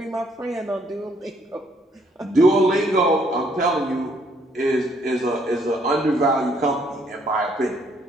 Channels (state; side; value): normal; both; correlation 0.67